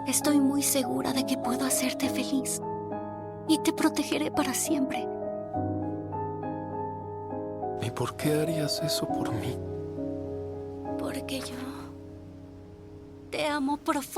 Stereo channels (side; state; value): both; identical; correlation 1.00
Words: Estoy muy segura de que puedo hacerte feliz y te protegeré para siempre. ¿Y por qué harías eso por mí? Porque yo te amo